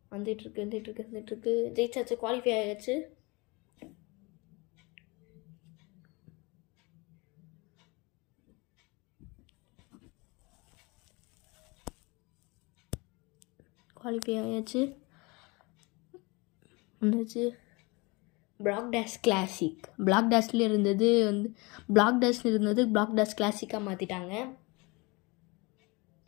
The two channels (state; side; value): quieter; right; 26.5 dB